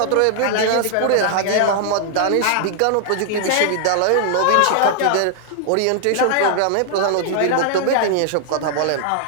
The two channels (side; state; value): both; different; correlation 0.00